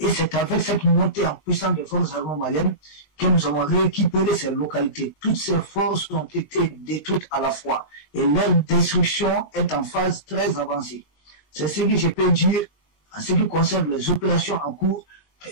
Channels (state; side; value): late; right; 20 ms